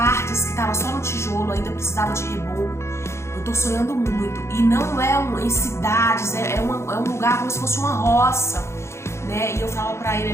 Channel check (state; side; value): late; right; 0.13 ms